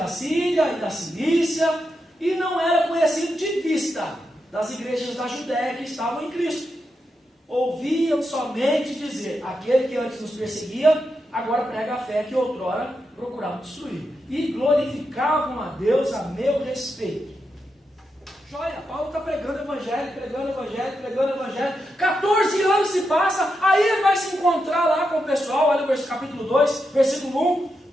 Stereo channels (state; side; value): normal; both; correlation 0.86